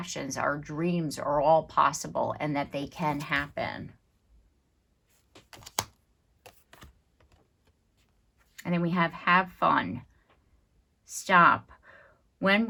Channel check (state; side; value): identical; both; correlation 1.00